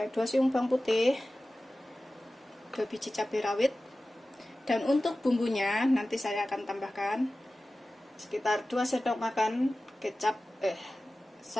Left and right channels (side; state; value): both; normal; correlation 0.96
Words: 2 siung bawang putih, 2 biji cabai rawit. Dan untuk bumbunya nanti saya akan tambahkan sekitar 2 sendok makan kecap